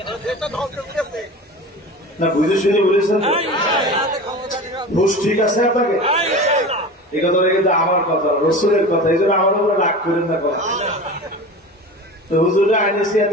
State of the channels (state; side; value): normal; both; correlation 0.33